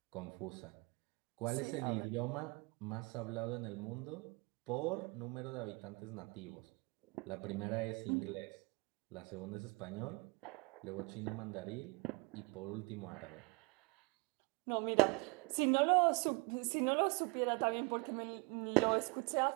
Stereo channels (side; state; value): left; quieter; 28.1 dB